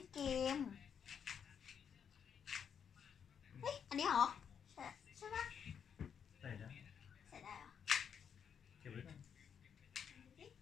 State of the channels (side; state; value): right; quieter; 7.6 dB